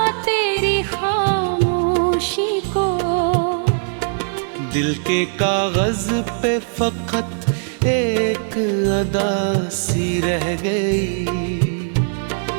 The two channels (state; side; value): silent; left; digital silence